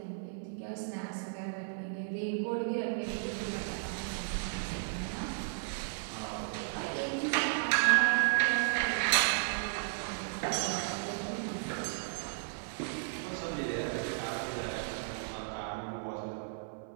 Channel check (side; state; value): left; silent; 55 dB below the other